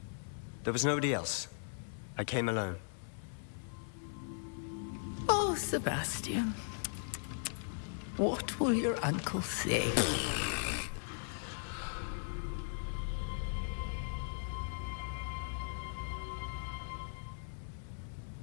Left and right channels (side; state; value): right; silent; 52 dB below the other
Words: There was nobody else. I came alone. Oh, Sebastian. What will your uncle say?